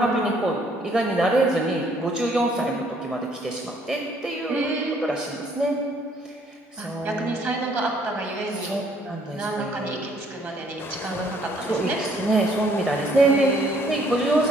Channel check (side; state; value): both; normal; correlation 0.64